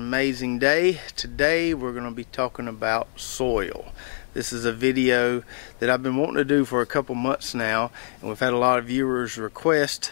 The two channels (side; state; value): right; silent; digital silence